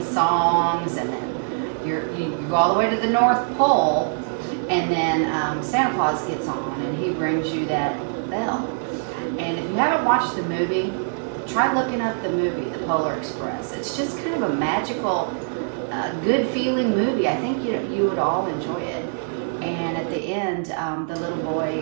songs, and then you go all the way to the North Pole. And then Santa Claus gets on, and he brings you that bell. And if you haven't watched the movie, try looking up the movie, The Polar Express. It's just kind of a magical, good feeling movie. I think you would all enjoy it. And at the end, the little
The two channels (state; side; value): silent; left; 63 dB below the other